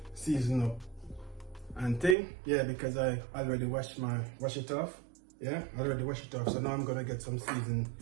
seasoned up and thing, yeah, because I already wash it off. Yeah, I already washed it off. So now I'm gonna get some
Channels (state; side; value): drops out; left; at 2.1 s